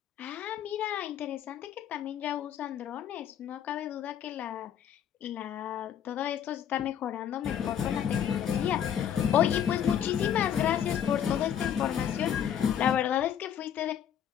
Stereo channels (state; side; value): quieter; right; 9.4 dB